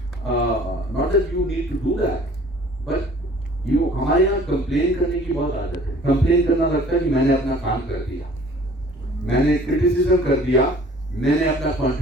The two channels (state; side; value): normal; both; correlation 0.51